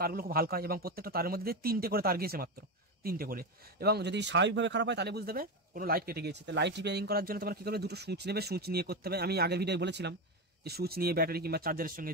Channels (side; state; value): both; normal; correlation 0.15